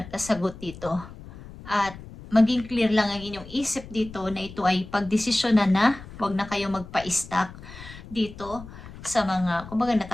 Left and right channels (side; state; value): left; noise; rumble, 15 dB below the sound